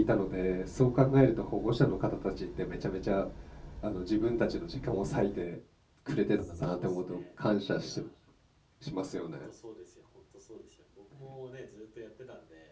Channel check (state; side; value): identical; both; correlation 1.00